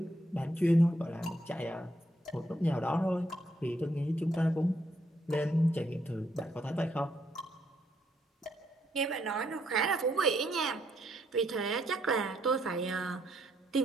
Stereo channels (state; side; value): normal; both; correlation 0.74